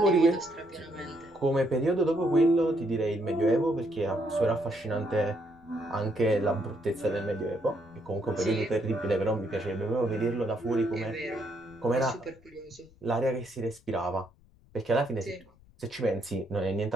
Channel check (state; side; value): noise; left; rumble, 28 dB below the sound